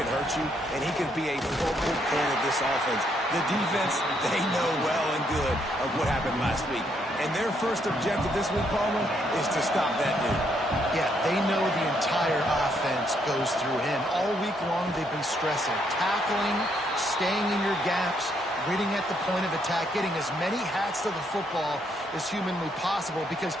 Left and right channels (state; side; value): normal; both; correlation 0.73